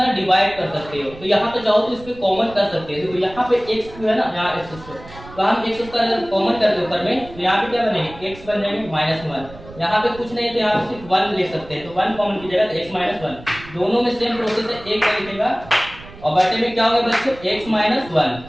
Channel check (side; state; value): right; noise; rumble, 18 dB below the sound